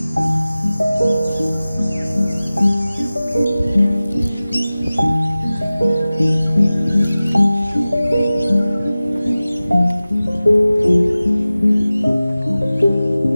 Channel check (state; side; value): inverted; both; correlation -0.97